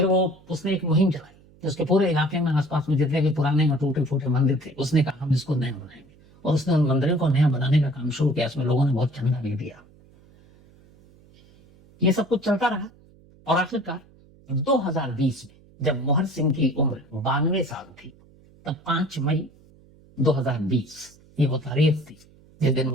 उसने एक मुहिम चलाई कि उसके पूरे इलाके में, आसपास में जितने भी पुराने और टूटे फूटे मंदिर थे, उसने कहा हम इसको नया बनाएंगे, और उसने उन मंदिरों को नया बनाने का काम शुरू किया। इसमें लोगों ने बहुत चंदा भी दिया। ये सब कुछ चलता रहा और आखिरकार 2020 में जब मोहर सिंह की उम्र 92 साल थी, तब 5 मई 2020 ये वो तारीख थी जिस दिन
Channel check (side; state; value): right; noise; hum, 27 dB below the sound